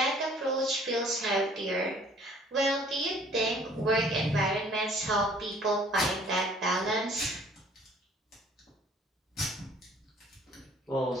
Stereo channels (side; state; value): both; normal; correlation 0.55